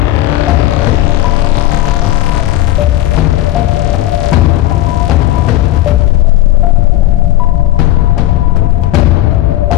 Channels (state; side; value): quieter; right; 15.2 dB